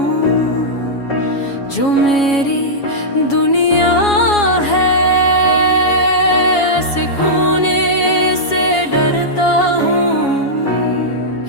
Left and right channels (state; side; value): late; right; 7.2 ms